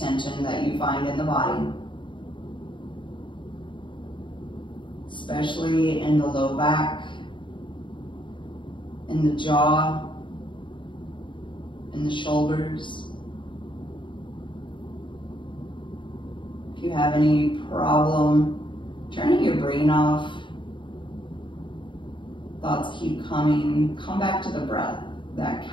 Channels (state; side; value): late; right; 0.23 ms